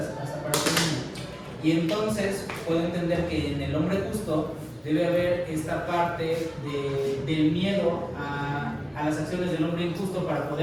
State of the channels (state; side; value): identical; both; correlation 1.00